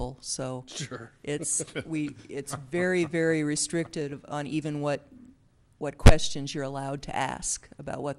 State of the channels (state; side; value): identical; both; correlation 1.00